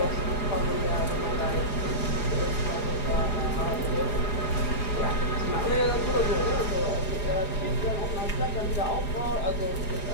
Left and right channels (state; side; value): late; right; 4.9 ms